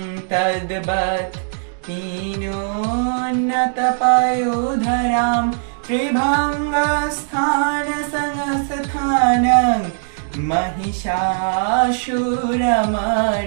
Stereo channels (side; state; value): left; silent; digital silence